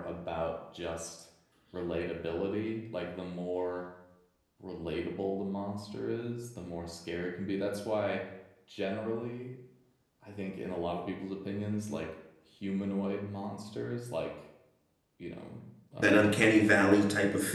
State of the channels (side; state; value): both; identical; correlation 1.00